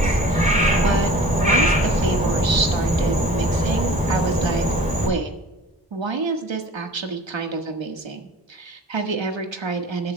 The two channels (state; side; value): normal; both; correlation 0.44